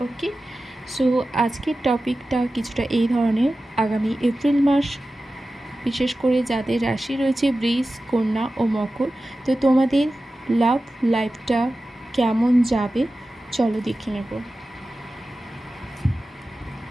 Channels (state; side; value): normal; both; correlation 0.94